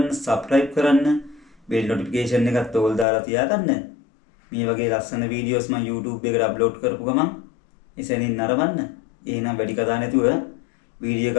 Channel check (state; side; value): drops out; right; at 3.1 s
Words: සබ්ස්ක්‍රයිබ් කරන්න, බෙල් නොටිෆිකේෂන් එකත් ඕල් දාලා තියාගන්න. මේ වගේ ලස්සන වීඩියෝස් මම YouTube එකට අප්ලෝඩ් කරපු ගමන් එසැනින් නරඹන්න. එහෙනම් වැඩි කතා නැතුව වීඩියෝ